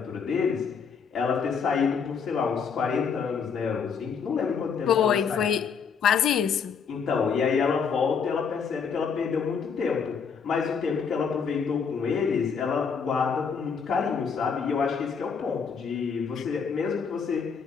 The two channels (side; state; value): right; quieter; 6.2 dB